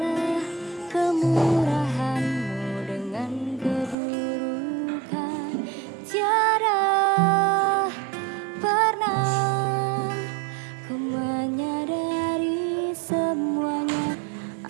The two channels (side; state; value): left; drops out; at 4.0 s